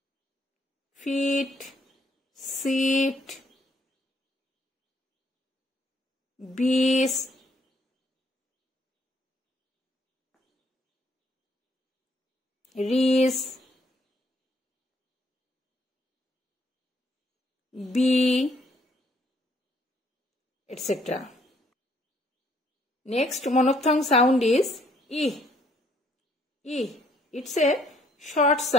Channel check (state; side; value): normal; both; correlation 0.66